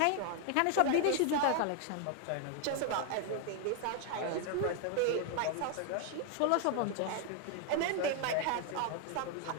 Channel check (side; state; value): both; different; correlation 0.01